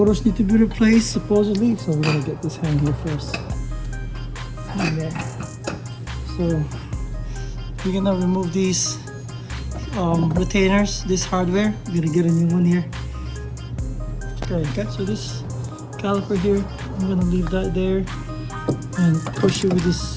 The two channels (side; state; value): both; identical; correlation 1.00